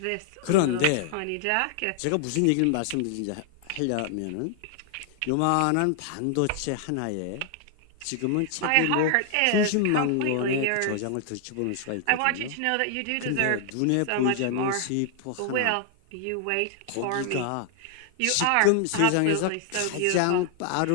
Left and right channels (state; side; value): different; both; correlation 0.00